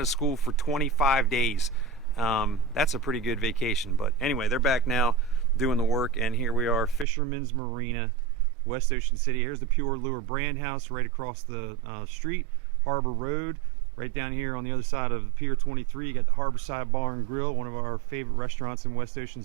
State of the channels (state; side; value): drops out; left; at 7.1 s